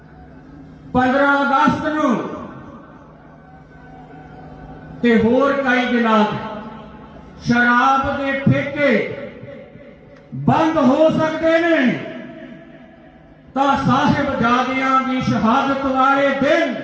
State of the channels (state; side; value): identical; both; correlation 1.00